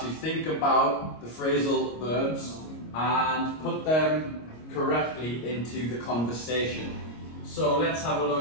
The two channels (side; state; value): right; late; 25 ms